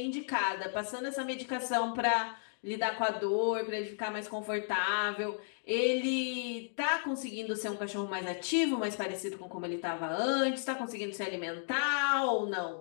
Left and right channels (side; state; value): right; silent; digital silence